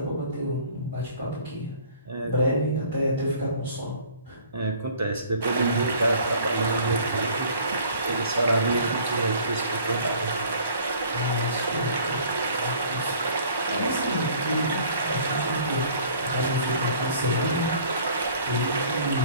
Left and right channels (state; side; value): inverted; both; correlation -0.52